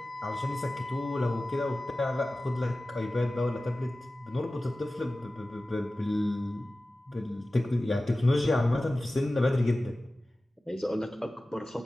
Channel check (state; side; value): normal; both; correlation 0.96